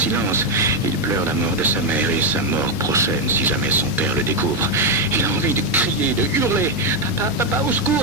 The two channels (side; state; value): both; normal; correlation 0.04